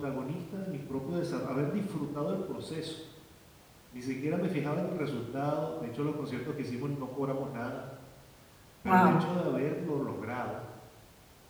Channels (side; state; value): both; identical; correlation 1.00